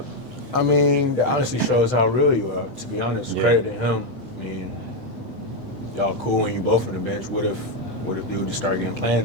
I mean, that honestly shows how real you are, to be honest. Yeah. Credit to him. I mean, y'all cool when you both on the bench. What if dude just started getting playing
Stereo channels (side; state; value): right; late; 8.0 ms